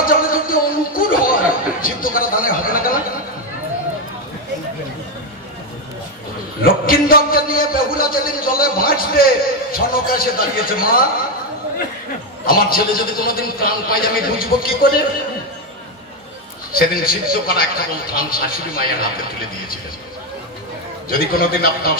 জলে যদি অনুকূল হয়, সিদ্ধ করা দানে হবে না কেন? লক্ষ্মীন্দরকে নিয়ে বেহুলা যেদিন জলে ভাসবে, সনক এসে দাঁড়িয়েছে, মা আমার ছেলে যদি কোনোদিন প্রাণ পাই আমি বুঝবো কি করে? সেদিন সিদ্ধ করা একটা ধান শাশুড়ি মায়ের হাতে তুলে দিয়েছিলেন। যদি কোনোদিন আপনার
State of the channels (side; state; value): both; normal; correlation 0.07